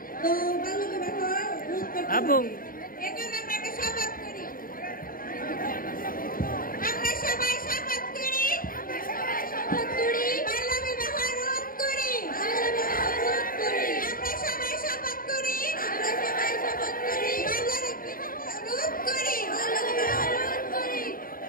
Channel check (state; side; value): late; right; 0.41 ms